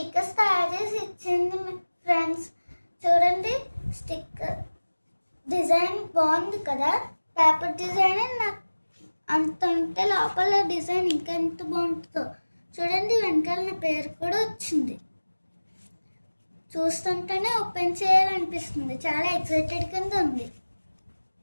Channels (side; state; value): both; inverted; correlation -1.00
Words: తయారు చేసి ఇచ్చింది ఫ్రెండ్స్. చూడండి స్టిక్కర్ డిజైన్ బాగుంది కదా, పేపర్ డిజైన్. నాకు అంత ఉంటే లోపల డిజైన్ ఇంకా ఎంత బాగుంటుందో. చూడండి వెనకాల నా పేరు కూడా వచ్చింది. చూస్తుంటేనే ఓపెన్ చేయాలనిపిస్తుంది, చాలా ఎక్సైటెడ్ కింద ఉంది.